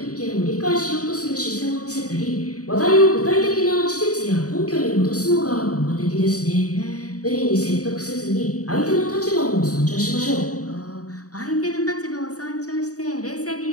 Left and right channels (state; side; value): late; right; 0.66 ms